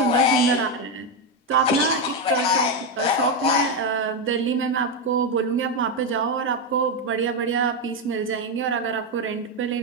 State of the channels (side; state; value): both; normal; correlation 0.07